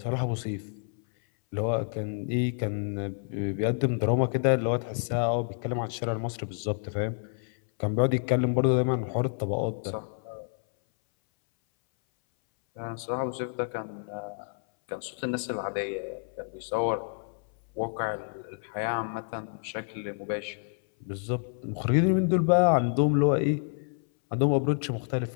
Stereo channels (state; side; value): silent; right; 59 dB below the other